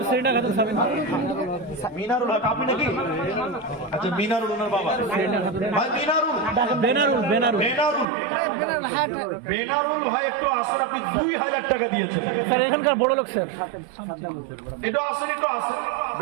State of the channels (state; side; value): drops out; left; at 8.1 s